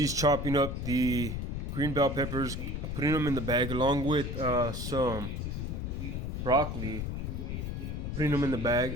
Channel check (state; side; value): noise; left; rumble, 3 dB below the sound